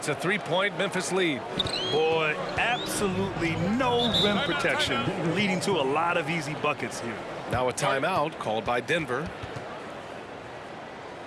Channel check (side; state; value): both; identical; correlation 1.00